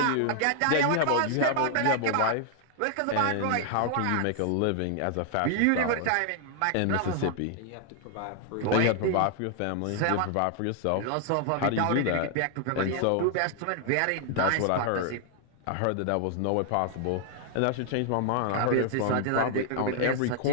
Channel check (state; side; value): different; both; correlation 0.00